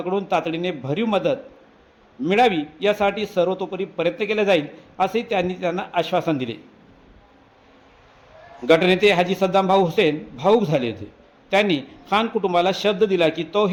तातडीने भरीव मदत मिळावी यासाठी सर्वतोपरी प्रयत्न केले जाईल असे त्यांना आश्वासन दिले। गटनेते हाजी सद्दाम भाऊ हुसेन भाऊक झाले होते। त्यांनी खान कुटुंबाला शब्द दिला की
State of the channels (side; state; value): both; identical; correlation 1.00